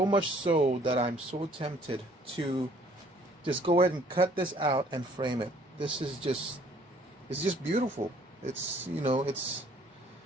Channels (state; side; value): normal; both; correlation 0.59